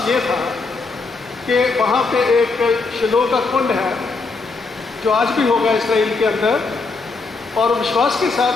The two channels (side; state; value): right; quieter; 4.0 dB